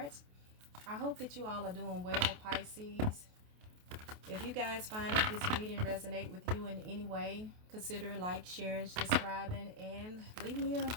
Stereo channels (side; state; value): left; late; 28 ms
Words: I hope that you all are doing well, Pisces. If you guys find that this reading resonate with you in any way, consider like, sharing, subscribing, and leave me a